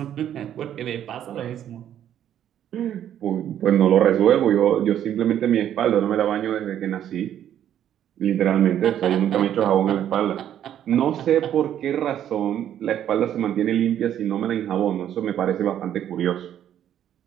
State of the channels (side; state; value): left; quieter; 10.5 dB